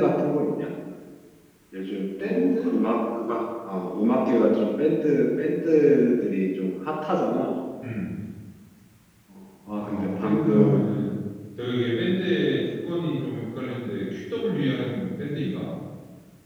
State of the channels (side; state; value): both; identical; correlation 1.00